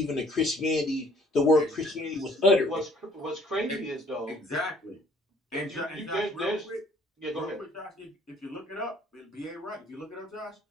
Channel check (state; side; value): normal; both; correlation 0.58